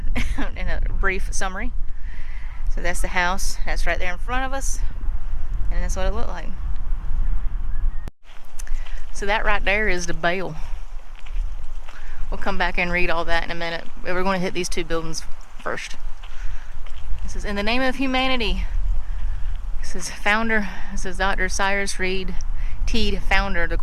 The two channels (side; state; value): both; identical; correlation 1.00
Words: in a brief summary. So that's the house. That's right there in front of us. And that's what it looked like. So that right there is the bell. We'll come back and read all that in a minute. We're going to hit these two buildings first. This is in the name of humanity. This is founder. This is Dr. Cyrus Teed, founder of the